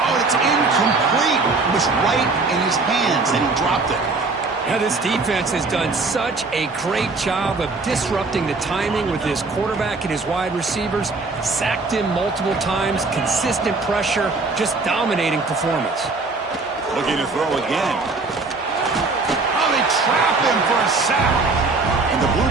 Oh, it's incomplete. It was right in his hands, and he dropped it. Now, this defense has done such a great job of disrupting the timing with his quarterback and his wide receivers. Sacked him multiple times, consistent pressure, just dominating performance. Looking to throw again. Oh, they trap him for a sack. And the Blue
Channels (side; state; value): left; quieter; 3.8 dB